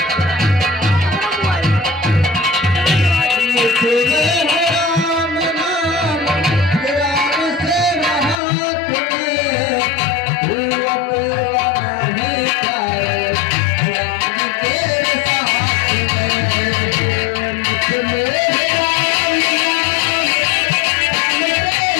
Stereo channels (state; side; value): drops out; right; at 8.4 s